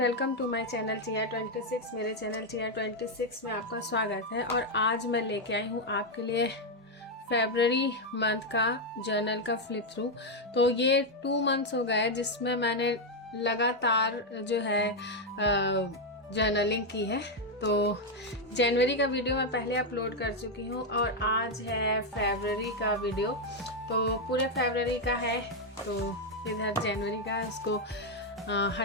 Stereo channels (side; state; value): both; normal; correlation 0.03